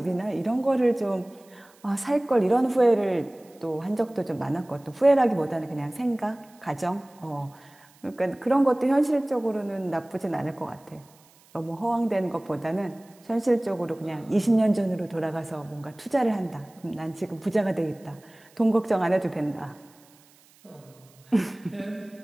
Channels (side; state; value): right; noise; hiss, 29 dB below the sound